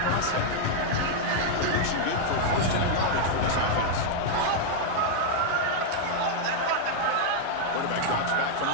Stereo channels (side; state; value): both; different; correlation -0.01